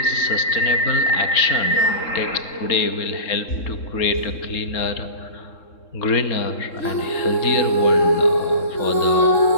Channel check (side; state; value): right; late; 3.7 ms